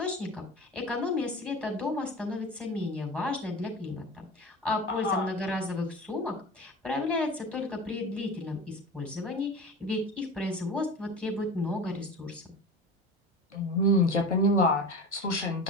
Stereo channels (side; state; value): both; normal; correlation 0.32